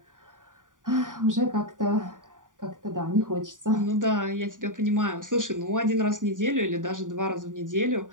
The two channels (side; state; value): left; late; 0.88 ms